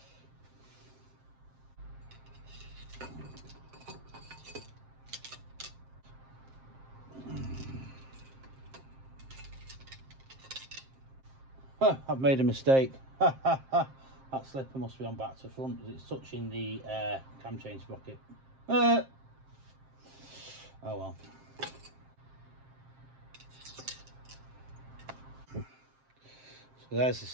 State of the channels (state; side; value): late; left; 7.6 ms